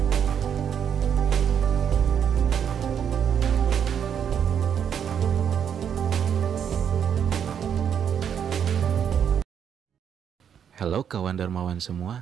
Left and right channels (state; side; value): quieter; left; 8.3 dB